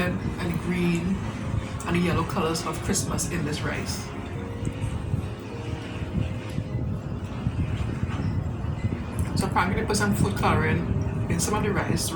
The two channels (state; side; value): identical; both; correlation 1.00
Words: and the green and the yellow colors of Christmas in this rice. So apparently they put some food coloring in some of the rice,